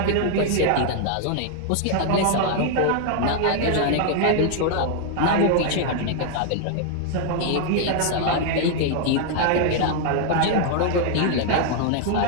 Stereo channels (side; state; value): both; different; correlation 0.00